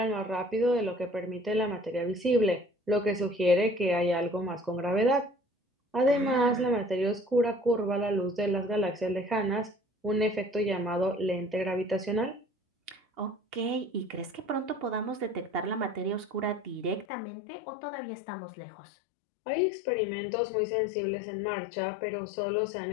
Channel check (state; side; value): drops out; right; at 17.1 s